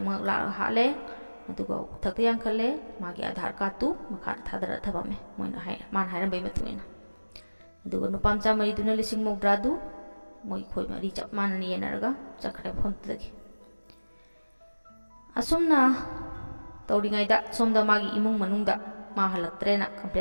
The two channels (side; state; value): both; inverted; correlation -1.00